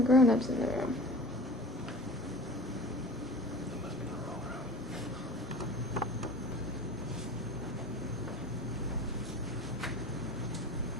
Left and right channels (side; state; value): both; normal; correlation 0.39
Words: grown-ups in the room. It must be the wrong room.